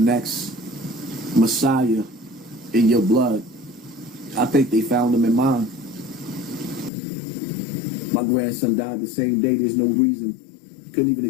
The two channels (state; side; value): drops out; right; at 6.9 s